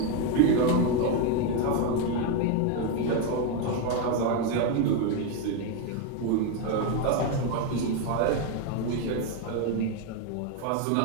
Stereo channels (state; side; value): different; both; correlation 0.02